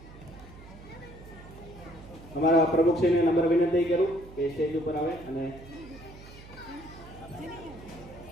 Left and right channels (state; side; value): noise; right; hum, 18 dB below the sound